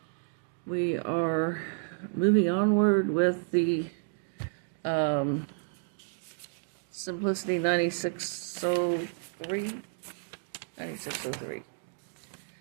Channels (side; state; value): left; silent; digital silence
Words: we are moving onward with the Simplicity 9603.